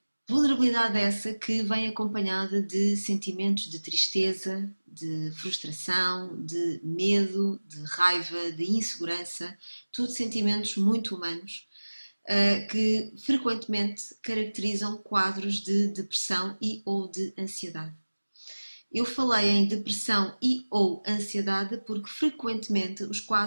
Vulnerabilidade essa que vem acompanhada de sentimentos de tristeza, de frustração, de medo, de raiva, de insegurança, tudo sentimentos muito humanos que frequentemente caracterizam quadros de depressão e ou de ansiedade. Eu falei em depressão e ou ansiedade porque frequentemente os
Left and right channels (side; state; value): both; inverted; correlation -1.00